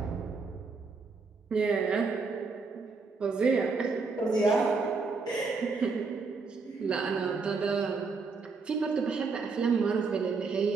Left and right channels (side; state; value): left; quieter; 4.5 dB